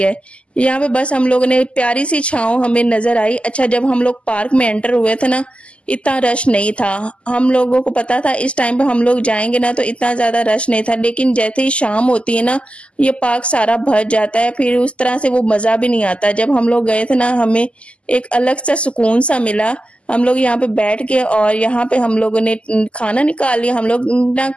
यहाँ पे बस हम लोगों ने प्यारी सी छांव हमें नजर आई। अच्छा, जब हम लोग पार्क में एंटर हुए थे ना, इतना रश नहीं था। हम लोगों को पता था इस टाइम पे हम लोग जाएंगे ना, तो इतना ज्यादा रश नहीं था। लेकिन जैसे ही शाम होती है ना, ये पार्क सारा भर जाता है, फिर उस तरह से वो मजा भी नहीं आता। जब हम लोग गए थे ना, हमें एक अलग सा सुकून सा मिला। हम लोग यहाँ पे बैठ के और यहाँ पे हम लोगों ने खाना निकाल लिया। हम लोग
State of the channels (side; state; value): right; late; 0.056 ms